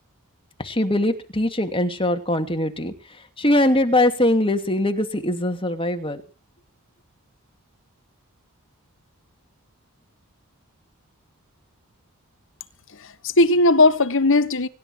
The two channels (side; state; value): both; normal; correlation 0.21